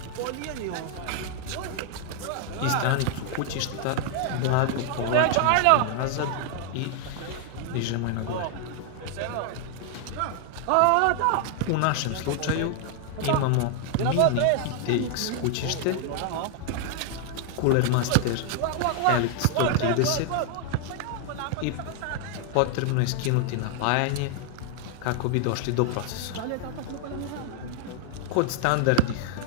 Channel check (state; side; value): different; both; correlation 0.00